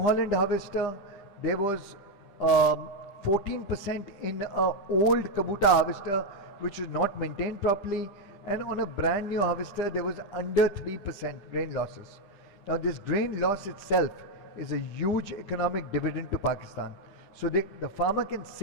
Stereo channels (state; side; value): late; right; 10 ms